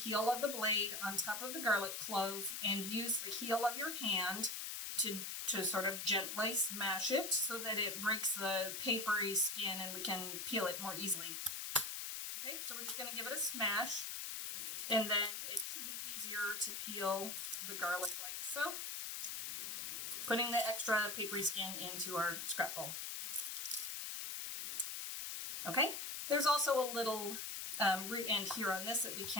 of the blade, on top of the garlic clove, and use the heel of your hand to sort of gently smash it so that it breaks the papery skin and we can peel it more easily. Okay, so we're just going to give it a smash, and then it should be easier to peel the garlic like so, putting the extra papery skin into our scrap bowl. Okay, there's also a little root end here on this that we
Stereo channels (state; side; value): noise; left; hiss, 4 dB below the sound